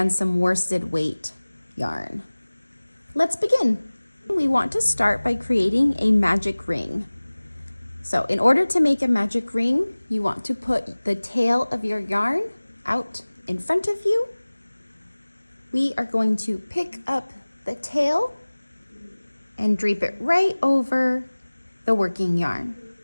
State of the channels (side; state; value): both; inverted; correlation -1.00